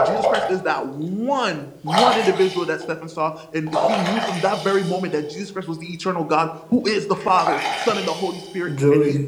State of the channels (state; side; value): identical; both; correlation 1.00